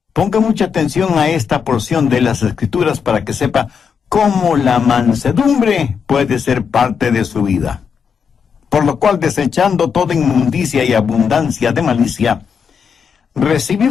Ponga mucha atención a esta porción de las Escrituras para que sepa cómo la mansedumbre puede ser parte de su vida. Por lo cual, desechando toda inmundicia y abundancia de malicia,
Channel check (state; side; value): quieter; right; 6.5 dB